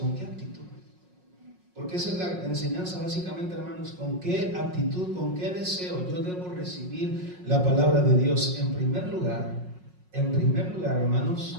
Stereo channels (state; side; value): late; left; 5.5 ms